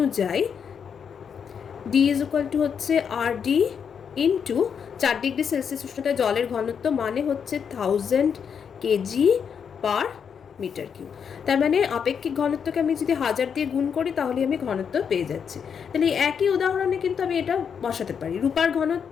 ডি ইজ ইকুয়াল টু হচ্ছে আর ডি ইন্টু 4 ডিগ্রি সেলসিয়াস উষ্ণতায় জলের ঘনত্ব মানে হচ্ছে 1000 কেজি পার মিটার কিউব। তার মানে আপেক্ষিক ঘনত্বকে আমি যদি 1000 দিয়ে গুণ করি তাহলে আমি ঘনত্ব পেয়ে যাচ্ছি। তাহলে একই উদাহরণে কিন্তু আমি এটা বসাতে পারি। রূপার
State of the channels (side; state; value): right; quieter; 7.1 dB